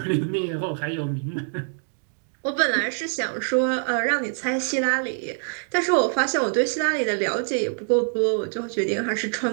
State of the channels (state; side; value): silent; left; 62 dB below the other